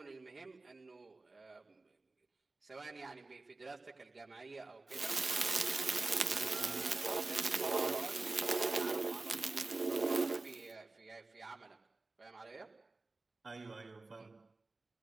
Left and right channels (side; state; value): left; quieter; 3.4 dB